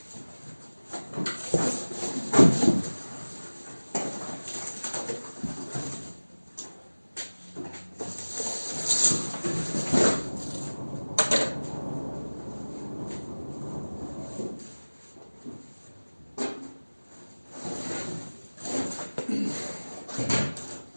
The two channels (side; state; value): both; inverted; correlation -1.00